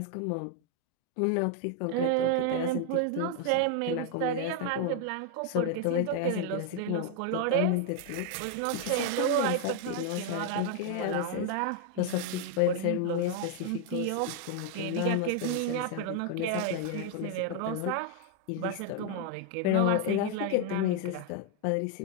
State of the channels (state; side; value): different; both; correlation 0.00